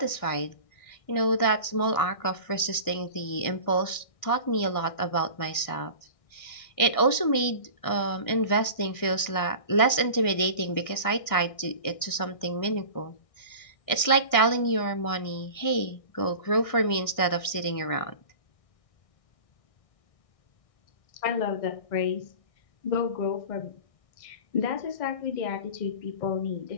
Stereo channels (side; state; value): right; late; 1.6 ms